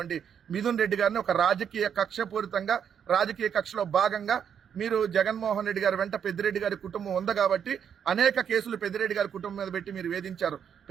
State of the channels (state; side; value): quieter; left; 8.1 dB